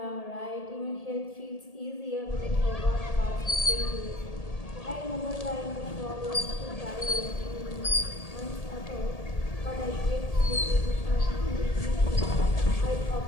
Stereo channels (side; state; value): right; late; 1.8 ms